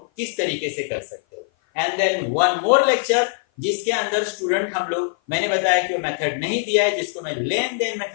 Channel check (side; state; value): right; silent; 55 dB below the other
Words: किस तरीके से कर सकते हो। And then one more lecture जिसके अंदर स्टूडेंट हम लोग, मैंने बताया कि वो मेथड नहीं दिया है जिसको मैं लेन देन